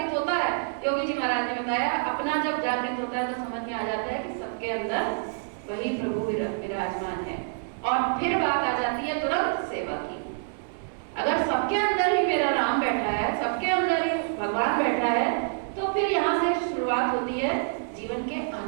होता है, योगी जी महाराज ने बताया, अपना जब जागृत होता है तो समझ में आ जाता है कि सबके अंदर वही प्रभु विराजमान है। और फिर बात आ जाती है तुरंत सेवा की। अगर सबके अंदर ही मेरा राम बैठा है, सबके अंदर ही भगवान बैठा है, तो फिर यहाँ से शुरुआत होती है जीवन के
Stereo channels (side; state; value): left; silent; 60 dB below the other